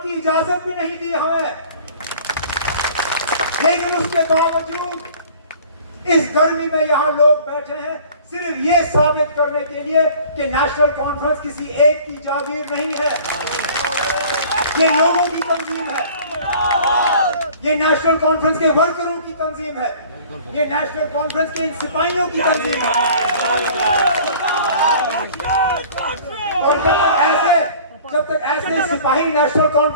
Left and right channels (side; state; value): both; inverted; correlation -0.48